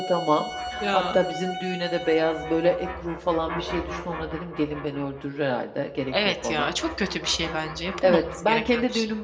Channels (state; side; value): identical; both; correlation 1.00